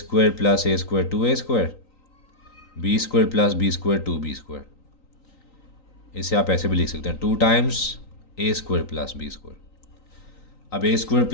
plus a square 2a square, b square plus b square 2b square. इसे आप ऐसे भी लिख सकते हैं 2 times a square plus b square. अब a square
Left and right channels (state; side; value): late; right; 3.9 ms